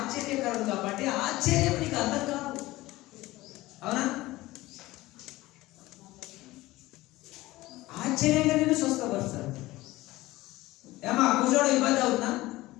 కాబట్టి ఆశ్చర్యం నీకు అర్థం కాదు. అవునా? ఆశ్చర్యంగా నేను స్వస్థపరుస్తాడు. ఏమా కూర్చోవడం ఇబ్బంది అవుతుందా?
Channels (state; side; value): quieter; right; 18.5 dB